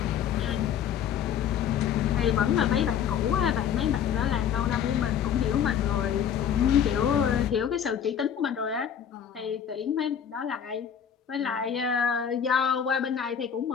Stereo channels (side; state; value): right; quieter; 8.6 dB